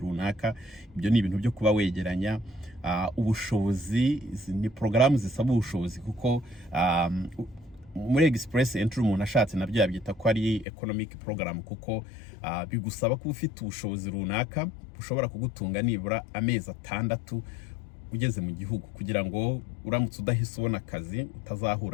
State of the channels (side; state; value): right; drops out; at 10.7 s